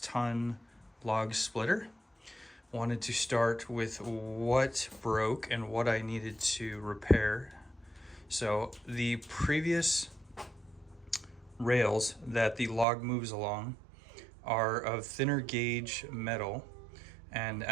log splitter. Wanted to start with what broke and what I needed to repair. So the previous rails that the log moves along are of thinner gauge metal, and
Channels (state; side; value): drops out; left; at 12.9 s